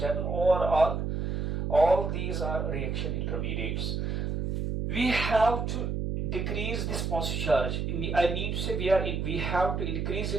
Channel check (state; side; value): noise; right; hum, 1 dB below the sound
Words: or all these are reaction intermediates. We have to decrease this positive charge. I mean to say we have to increase